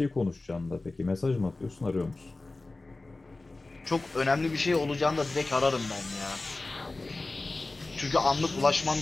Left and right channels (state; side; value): quieter; right; 3.2 dB